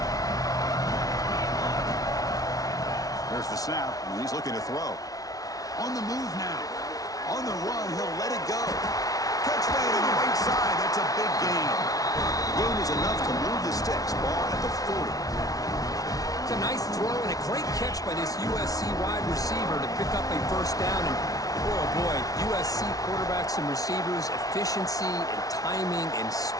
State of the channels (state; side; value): late; right; 0.18 ms